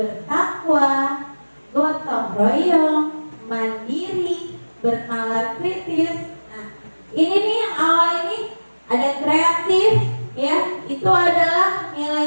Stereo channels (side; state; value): both; inverted; correlation -1.00